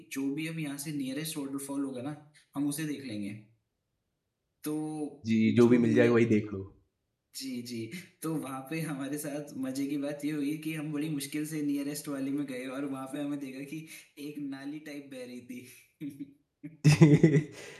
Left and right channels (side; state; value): both; identical; correlation 1.00